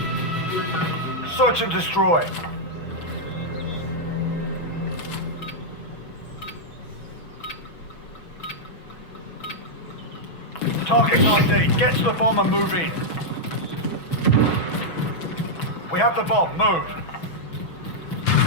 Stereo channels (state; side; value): late; right; 6.1 ms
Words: Search and destroy. Target ID. Get to the bomb and move in. We have the bomb. Move.